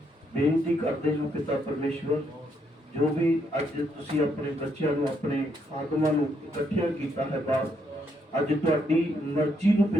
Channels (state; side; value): normal; both; correlation 0.75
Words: ਬੇਨਤੀ ਕਰਦੇ ਹਾਂ ਪਿਤਾ ਪਰਮੇਸ਼ਵਰ, ਜੋ ਵੀ ਅੱਜ ਤੁਸੀਂ ਆਪਣੇ ਬੱਚਿਆਂ ਨੂੰ ਆਪਣੇ ਆਗਮਾਂ ਨੂੰ ਇਕੱਠਿਆਂ ਕੀਤਾ ਹੈ ਬਾਪ, ਅੱਜ ਤੁਹਾਡੀ ਮਰਜ਼ੀ ਨੂੰ